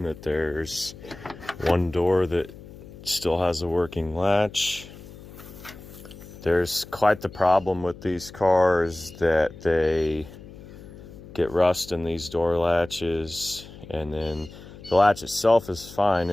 that there's one door that still has a working latch. There's quite the problem with these cars that they get rust in these door latches, and then the latch itself is fine,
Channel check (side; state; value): left; noise; hum, 17 dB below the sound